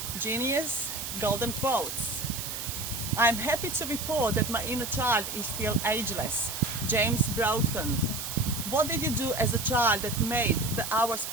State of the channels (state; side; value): noise; right; hiss, 6 dB below the sound